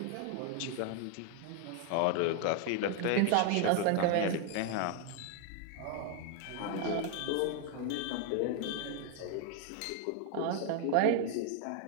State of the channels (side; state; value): both; different; correlation 0.00